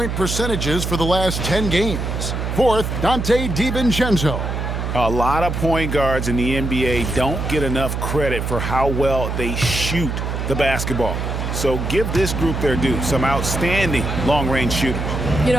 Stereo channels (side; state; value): right; noise; hum, 3 dB below the sound